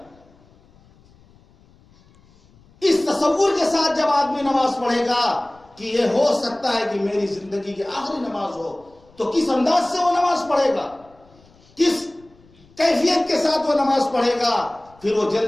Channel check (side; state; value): left; noise; rumble, 29 dB below the sound